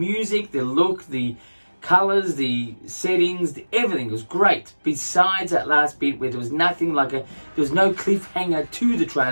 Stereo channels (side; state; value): both; inverted; correlation -1.00